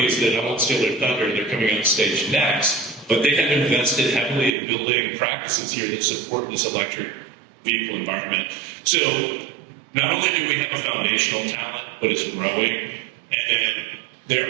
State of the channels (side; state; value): left; drops out; at 4.5 s